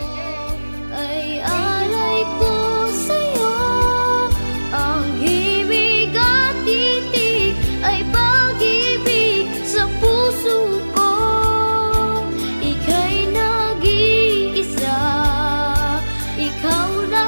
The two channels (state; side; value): inverted; both; correlation -1.00